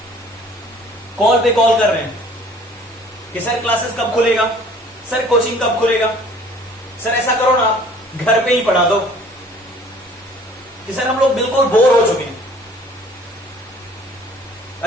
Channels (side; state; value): both; normal; correlation 0.53